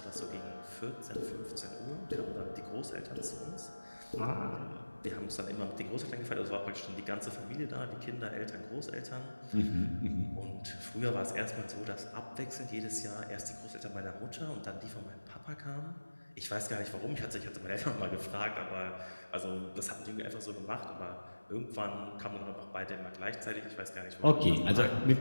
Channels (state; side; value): inverted; both; correlation -1.00